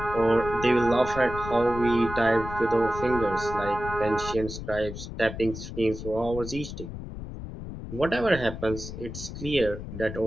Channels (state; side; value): noise; left; rumble, 9 dB below the sound